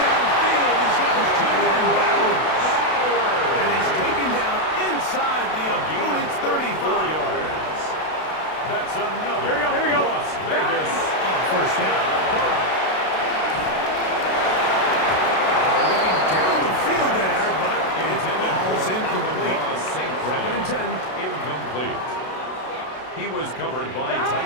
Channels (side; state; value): right; late; 32 ms